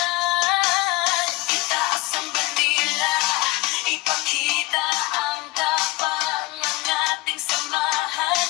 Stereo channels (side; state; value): right; quieter; 20.8 dB